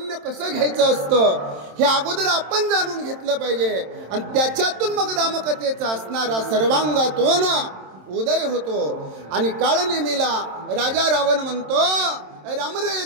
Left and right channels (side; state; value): left; late; 27 ms